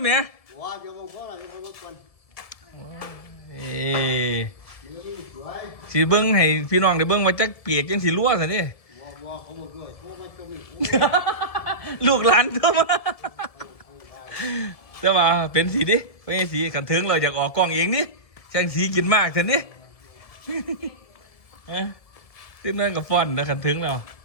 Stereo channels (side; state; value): right; late; 1.7 ms